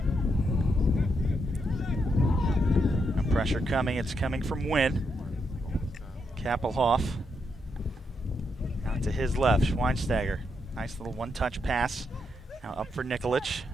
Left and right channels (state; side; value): normal; both; correlation 0.80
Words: Pressure coming, it's coming from Wynn. Kappelhoff out to his left, Schweinsteiger. Nice little one-touch pass. Now up for Nikolic